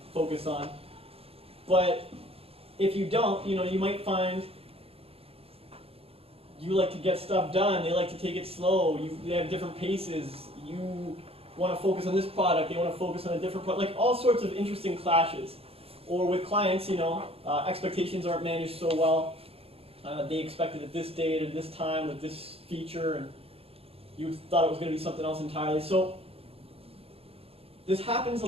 focus on. But if you don't, you might find you like to get stuff done. They like to take it slow. They have different paces. You want to focus on this product. They want to focus on a different product. Like all sorts of interesting clashes. Or with clients, expectations aren't managed so well. They expected at this date at this time with this feature, and you thought it was going to be something else entirely. So this happens a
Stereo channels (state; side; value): late; left; 0.28 ms